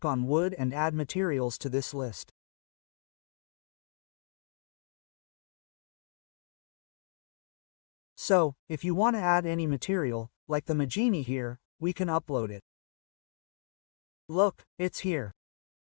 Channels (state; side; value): silent; right; digital silence